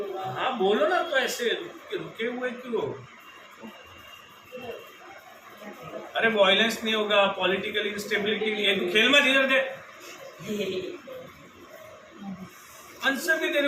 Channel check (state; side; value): identical; both; correlation 1.00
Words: होगा। हाँ बोलो ना, तो ऐसे रुके हुए क्यों? अरे वायलेंस नहीं होगा, पॉलिटिकल इंस्टेबिलिटी नहीं है, खेल मत इधर दे। आंसर भी तेरे